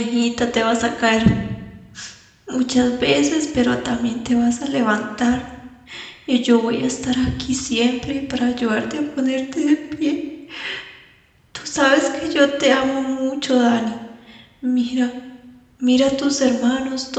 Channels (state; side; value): identical; both; correlation 1.00